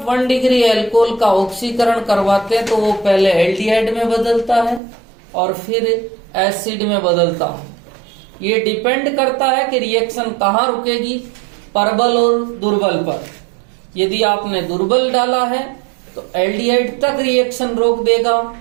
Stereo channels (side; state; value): left; drops out; at 4.8 s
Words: 1 डिग्री एल्कोहल का ऑक्सीकरण करवाते हैं तो वो पहले एल्डिहाइड में बदलता है और फिर एसिड में बदलता है। ये डिपेंड करता है कि रिएक्शन कहाँ रुकेगी, प्रबल और दुर्बल पर। यदि आपने दुर्बल डाला है तो एल्डिहाइड तक रिएक्शन रोक देगा